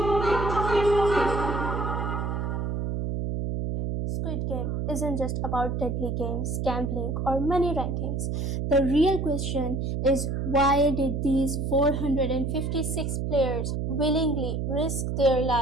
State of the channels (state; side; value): noise; right; hum, 1 dB below the sound